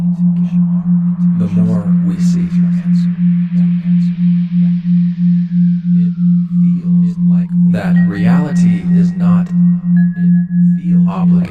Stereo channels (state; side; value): identical; both; correlation 1.00